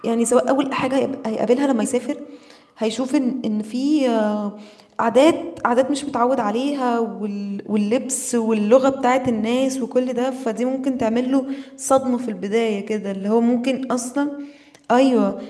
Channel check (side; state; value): both; identical; correlation 1.00